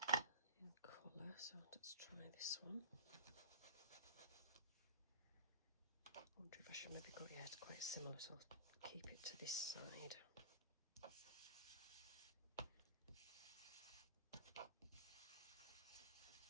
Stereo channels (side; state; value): both; inverted; correlation -0.38